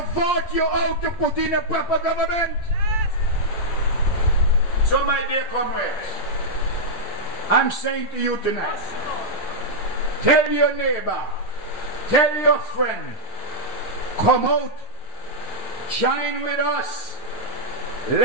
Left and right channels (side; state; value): right; late; 9.1 ms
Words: vote you out to put in a proper government. Yes. So my dear comrades, I'm saying to you tonight, tell your neighbor, tell your friend, come out, join with us